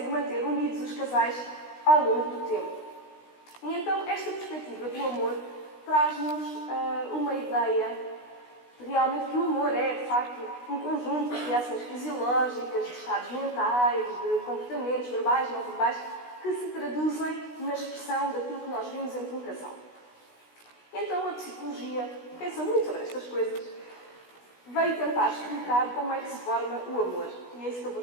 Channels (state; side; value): late; right; 16 ms